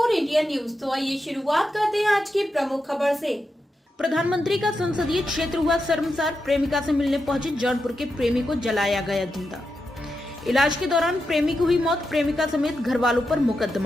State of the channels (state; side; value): normal; both; correlation 0.87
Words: इंडिया न्यूज। तो आइए शुरुआत करते हैं आज की प्रमुख खबर से। प्रधानमंत्री का संसदीय क्षेत्र हुआ शर्मसार, प्रेमिका से मिलने पहुंचे जौनपुर के प्रेमी को जलाया गया जिंदा। इलाज के दौरान प्रेमी की हुई मौत, प्रेमिका समेत घर वालों पर